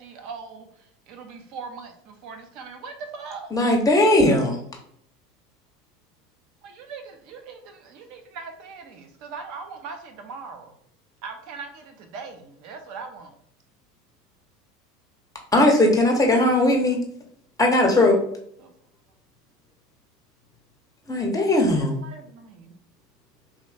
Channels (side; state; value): both; normal; correlation 0.45